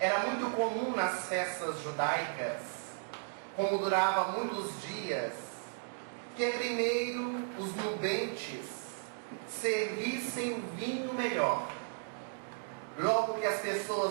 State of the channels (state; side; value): silent; left; digital silence